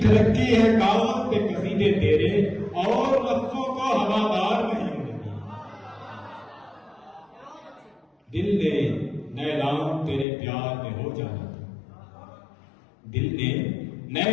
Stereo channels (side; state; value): right; drops out; at 10.2 s